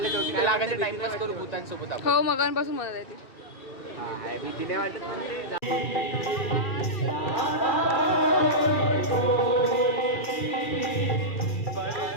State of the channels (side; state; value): right; late; 2.4 ms